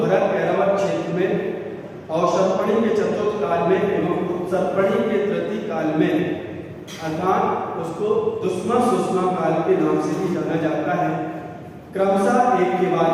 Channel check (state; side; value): identical; both; correlation 1.00